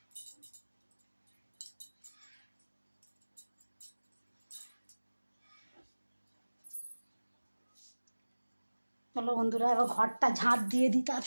চলো বন্ধুরা, এবার ঘরটা ঝাঁট দিয়ে দিই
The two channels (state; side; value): inverted; both; correlation -1.00